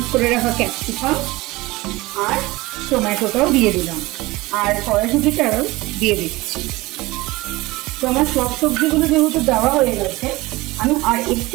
করে রাখা ক্যাপসিকাম আর টমেটোটাও দিয়ে দিলাম, আর কড়াইশুঁটিটাও দিয়ে দিচ্ছি। তো আমার সব সবজিগুলো যেহেতু দেওয়া হয়ে গেছে আমি আর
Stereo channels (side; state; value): left; quieter; 20.8 dB